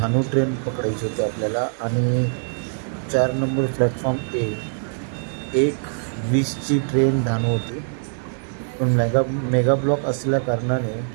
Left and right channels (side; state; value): left; silent; 64 dB below the other